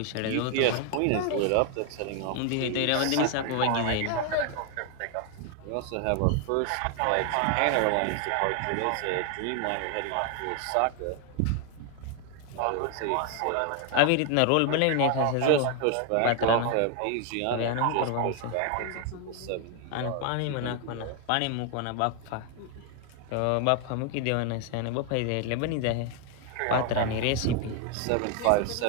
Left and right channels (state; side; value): different; both; correlation 0.00